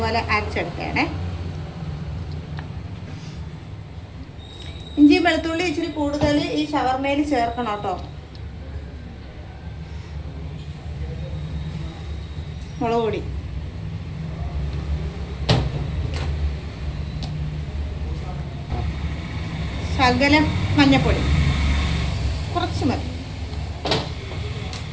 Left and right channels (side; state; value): both; identical; correlation 1.00